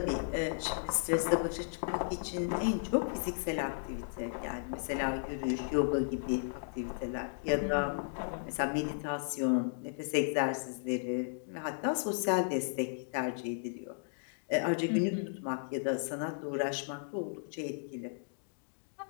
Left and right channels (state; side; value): silent; right; digital silence